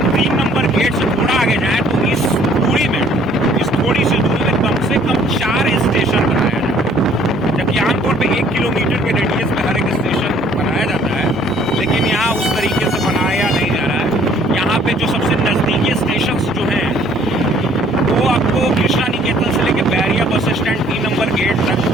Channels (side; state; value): both; normal; correlation 0.59